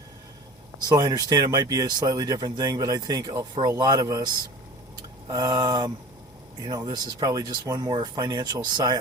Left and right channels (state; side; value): normal; both; correlation 0.39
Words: So I understand it might be a slightly different thing, but I think for a lot of us, this is probably just one more financial